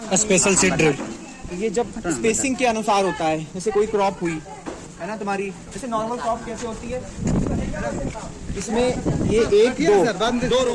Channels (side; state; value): both; identical; correlation 1.00